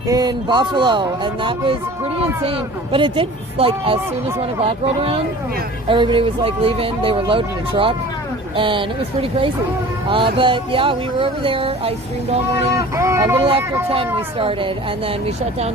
in Buffalo, and that was pretty insane. But it did, like, as soon as 1 o'clock rolled around, everybody was like leaving. They were loading a truck, and it was pretty crazy. But yeah, we were over there. I streamed all morning. A little after 10 we started, and then we shut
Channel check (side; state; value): both; normal; correlation 0.43